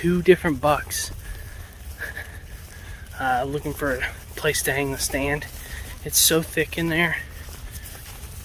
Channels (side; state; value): both; identical; correlation 1.00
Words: different bucks looking for a place to hang the stand. It's so thick in there.